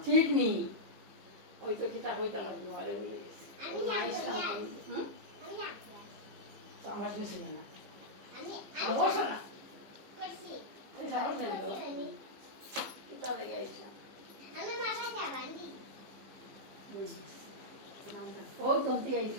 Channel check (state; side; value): late; left; 15 ms